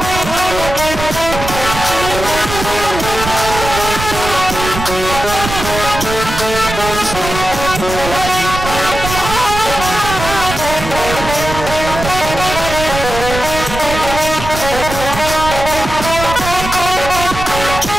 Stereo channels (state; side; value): noise; right; rumble, 7 dB below the sound